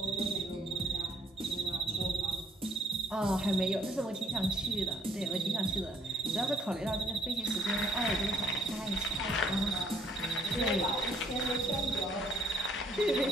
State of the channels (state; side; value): normal; both; correlation 0.63